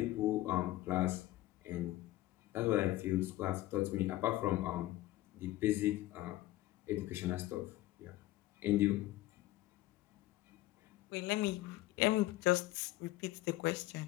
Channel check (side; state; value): right; quieter; 16.5 dB